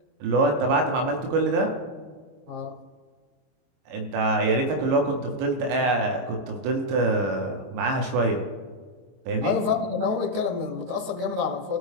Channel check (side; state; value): left; late; 22 ms